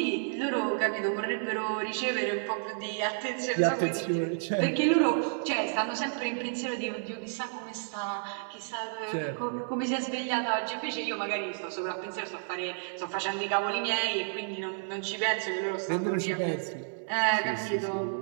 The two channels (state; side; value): silent; left; 57 dB below the other